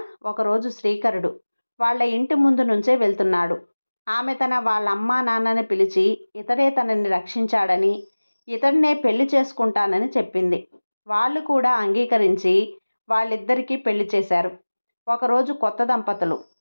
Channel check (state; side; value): inverted; both; correlation -1.00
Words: ఒకరోజు శ్రీకరుడు వాళ్ళ ఇంటి ముందు నుంచే వెళ్తున్నాడు. ఆమె వాళ్ళ అమ్మా నాన్నని పిలిచి ఇతడే తనని రక్షించాడని, ఇతడినే పెళ్లి చేసుకుంటానని చెప్పింది. వాళ్ళు కూడా అంగీకరించి వాళ్ళిద్దరికీ పెళ్లి చేశారు. ఒకరోజు కొత్త దంపతులు